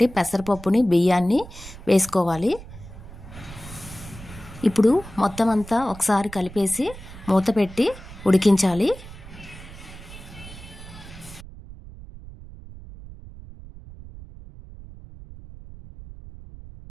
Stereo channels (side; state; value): right; noise; rumble, 16 dB below the sound